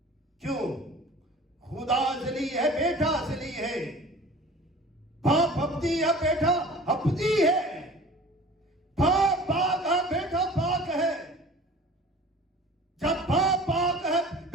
क्यों? खुदा अजली है, बेटा अजली है, बाप अबदी है, बेटा अबदी है, बाप पाक है, बेटा पाक है। जब बाप पाक है,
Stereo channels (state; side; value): normal; both; correlation 0.43